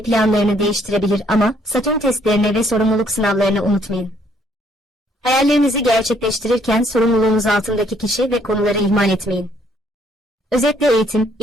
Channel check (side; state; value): both; normal; correlation 0.66